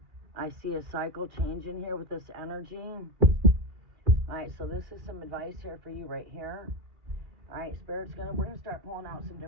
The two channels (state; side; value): late; left; 2.4 ms